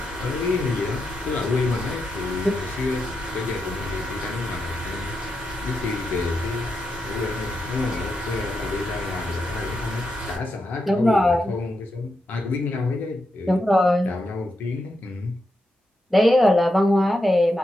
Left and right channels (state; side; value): normal; both; correlation 0.85